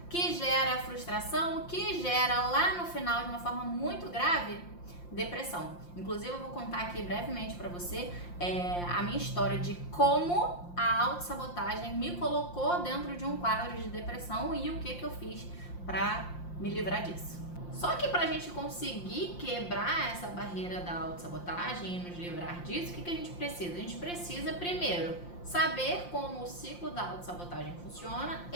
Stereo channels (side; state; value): right; late; 5.7 ms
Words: que gera frustração, que gera lá no final, de uma forma muito grave, depressão. Inclusive eu vou contar aqui brevemente para você a minha história de como a autossabotagem me colocou dentro de um quadro de depressão e o que eu fiz para me livrar disso. Só que pra gente conseguir quebrar essa barreira da autossabotagem e nos livrar disso, o que a gente precisa? A gente precisa primeiro saber como o ciclo da autossabotagem funciona